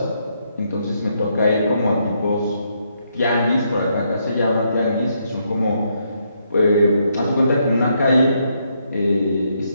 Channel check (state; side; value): inverted; both; correlation -0.76